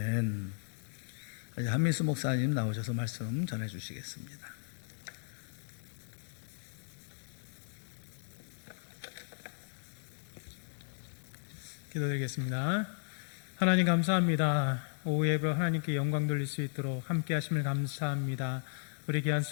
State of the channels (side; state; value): right; silent; digital silence